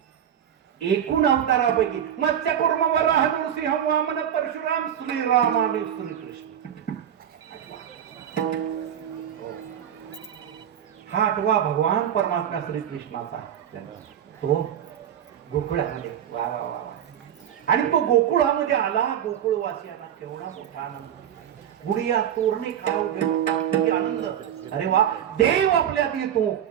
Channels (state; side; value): quieter; left; 9.7 dB